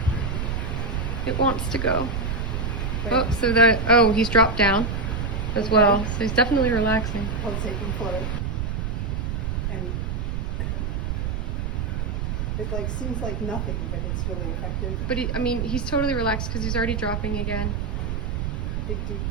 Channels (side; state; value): right; noise; rumble, 1 dB below the sound